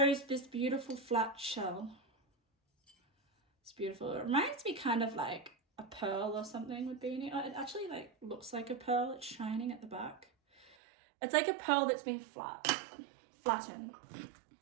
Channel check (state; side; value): drops out; left; at 10.8 s